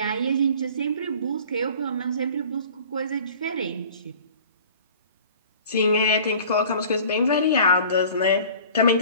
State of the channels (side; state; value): both; inverted; correlation -0.46